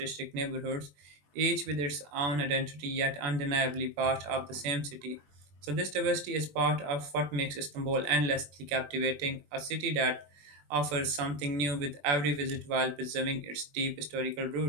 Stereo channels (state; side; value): late; left; 20 ms